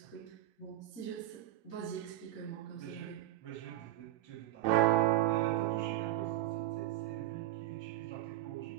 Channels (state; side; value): quieter; left; 14.4 dB